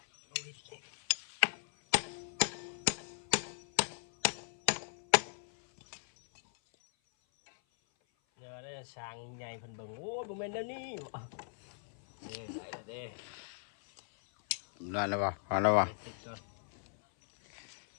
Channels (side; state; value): right; silent; 53 dB below the other